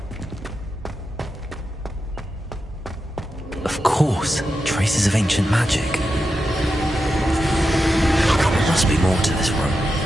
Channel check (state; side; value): normal; both; correlation 0.88